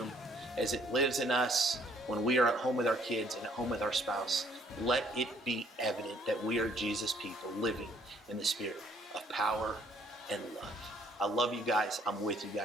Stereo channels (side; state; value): both; normal; correlation 0.63